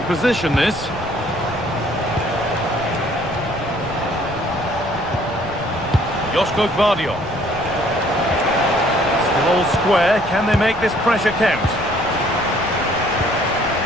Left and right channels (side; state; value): left; noise; rumble, 16 dB below the sound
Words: position, this. Joško Gvardiol. Still all square. Can they make this pressure count?